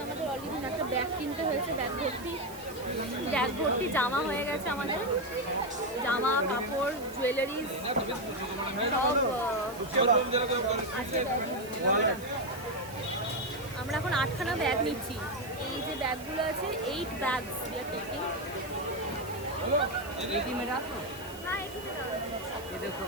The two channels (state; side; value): noise; right; hiss, 17 dB below the sound